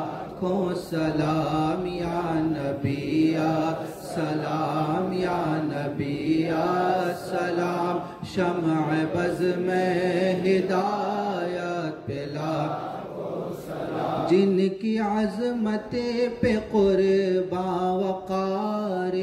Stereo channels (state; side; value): identical; both; correlation 1.00